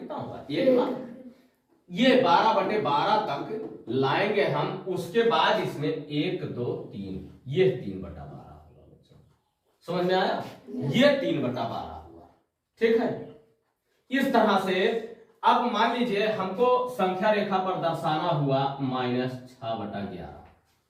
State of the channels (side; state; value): both; identical; correlation 1.00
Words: होगा, 1 मान। ये 12/12 तक लाएंगे हम, उसके बाद इसमें 1 2 3, ये 3/12 होगा बच्चों, समझ में आया। ये 3/12 हुआ, ठीक है। इस तरह से अब मान लीजिए हमको संख्या रेखा पर दर्शाना हुआ -6/11,